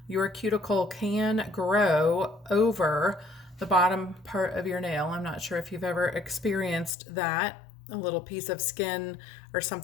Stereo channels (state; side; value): drops out; right; at 6.9 s